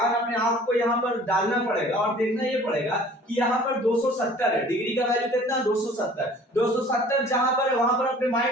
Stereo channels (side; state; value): both; normal; correlation 0.49